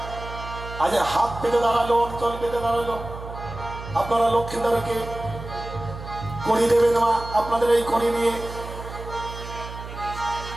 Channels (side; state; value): right; noise; hum, 11 dB below the sound